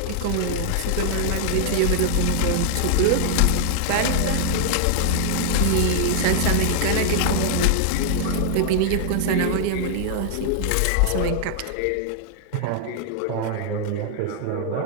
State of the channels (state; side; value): different; both; correlation -0.01